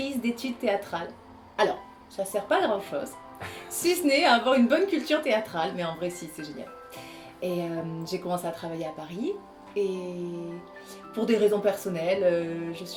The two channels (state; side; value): identical; both; correlation 1.00